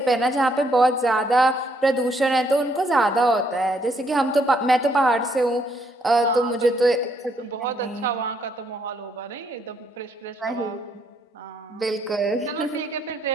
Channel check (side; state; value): both; normal; correlation 0.71